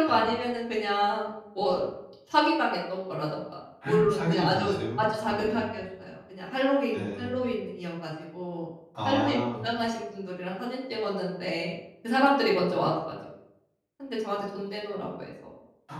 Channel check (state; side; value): identical; both; correlation 1.00